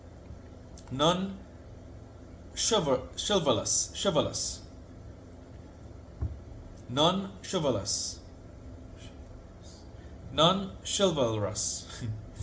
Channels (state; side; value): identical; both; correlation 1.00